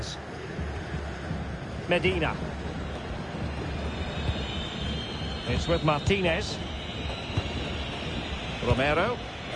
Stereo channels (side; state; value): both; identical; correlation 1.00